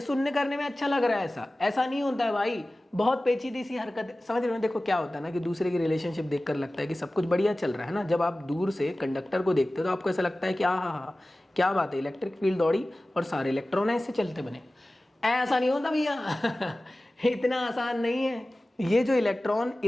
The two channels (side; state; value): both; normal; correlation 0.97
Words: सुनने करने में अच्छा लग रहा है, ऐसा नहीं होता है भाई, बहुत पेचीदी सी हरकत, समझ रहे हो? देखो क्या होता है ना कि दूसरे की रिलेशनशिप देखकर लगता है कि सब कुछ बढ़िया चल रहा है ना। जब आप दूर से कंडक्टर को देखते हो तो आपको ऐसा लगता है कि हाँ क्या बात है, इलेक्ट्रिक फील्ड दौड़ी और सारे इलेक्ट्रॉन ऐसे चलते बने। ऐसा नहीं होता भैया इतना आसान नहीं है। ये जो इलेक्ट्रॉन